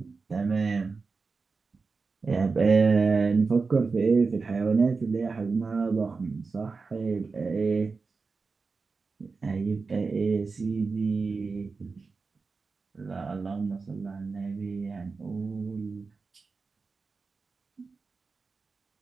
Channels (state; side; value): quieter; left; 4.4 dB